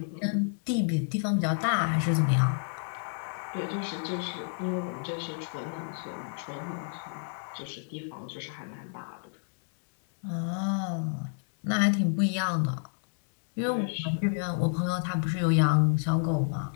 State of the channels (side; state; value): right; silent; digital silence